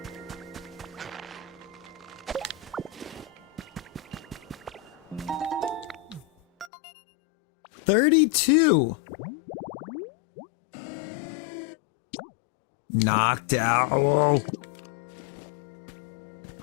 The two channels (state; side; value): drops out; right; at 6.7 s